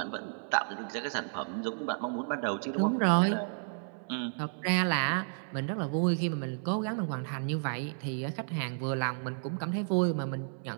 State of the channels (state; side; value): silent; left; 56 dB below the other